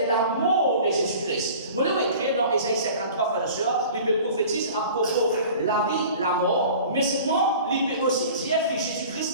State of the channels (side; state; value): both; inverted; correlation -0.43